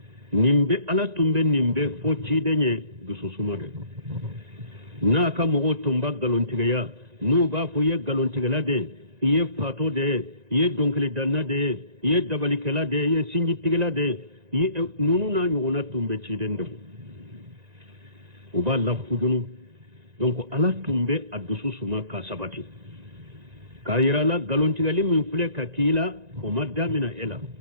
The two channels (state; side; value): late; left; 1.9 ms